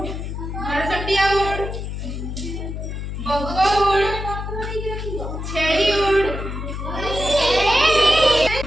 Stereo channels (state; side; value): noise; left; hum, 6 dB below the sound